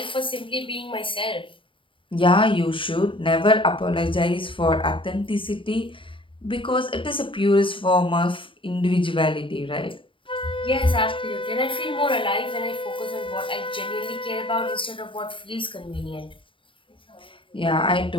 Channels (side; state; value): right; late; 0.25 ms